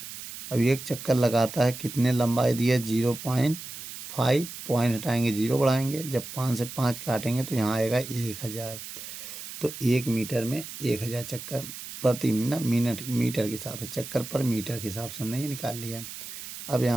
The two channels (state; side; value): noise; right; hiss, 11 dB below the sound